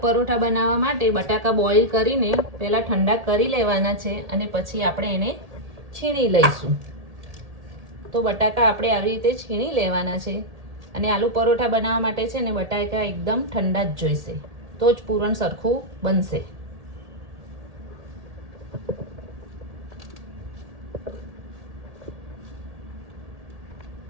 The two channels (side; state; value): left; late; 1.8 ms